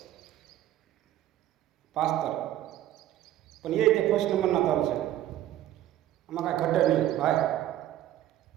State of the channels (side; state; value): left; quieter; 13.1 dB